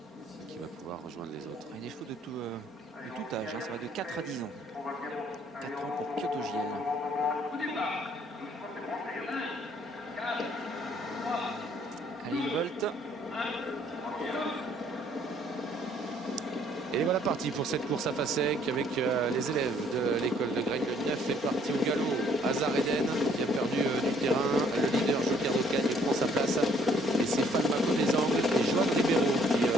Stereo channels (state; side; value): normal; both; correlation 0.62